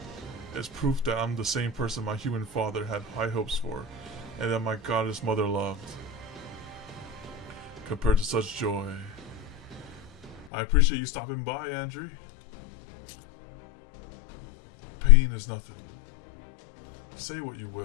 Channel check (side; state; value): right; drops out; at 10.5 s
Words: It's proof that I'm the same person my human father had high hopes for, and that my goddess mother loved. Compared to such joy. I appreciate you stopping by, Andre. Pain is nothing. Say what you